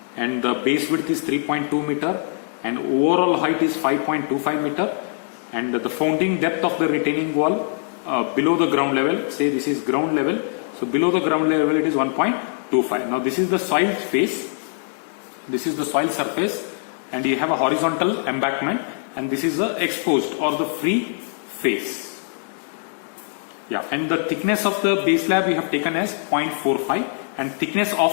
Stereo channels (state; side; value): silent; right; digital silence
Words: and the base width is 3.2 meter and overall height is 5.25 meter, and the founding depth of the retaining wall below the ground level, say this is ground level, so below the ground level it is 1.25. Now this is the soil face, this is the soil surface, and you have a horizontal embankment, and this is the exposed or the free face. Yeah, and the thickness of the base slab we have taken as 0.45, and thickness